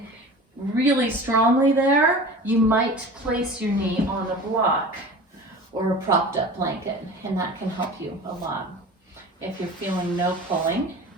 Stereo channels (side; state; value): both; normal; correlation 0.37